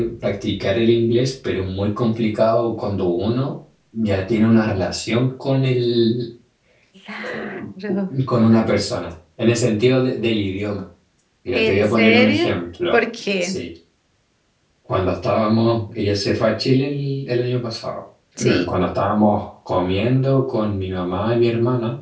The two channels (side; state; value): both; identical; correlation 1.00